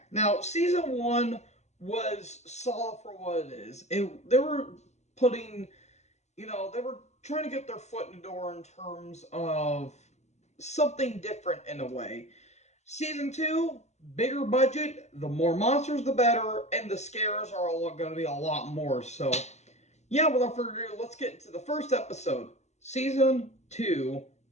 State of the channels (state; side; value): late; right; 0.33 ms